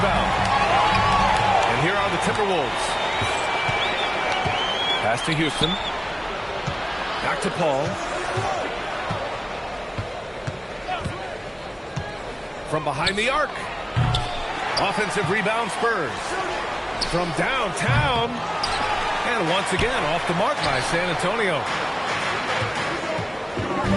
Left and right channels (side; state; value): both; identical; correlation 1.00